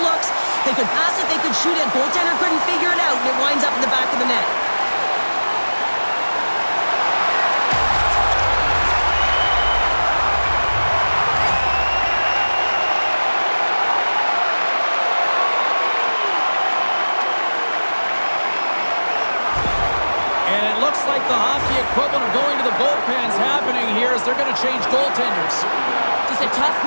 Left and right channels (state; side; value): inverted; both; correlation -1.00